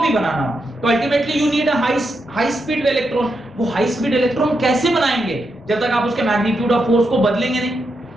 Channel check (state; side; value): normal; both; correlation 0.83